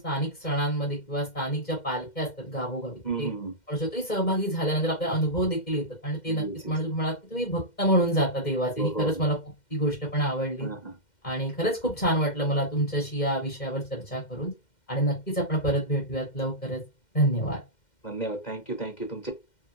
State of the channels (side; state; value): right; late; 2.1 ms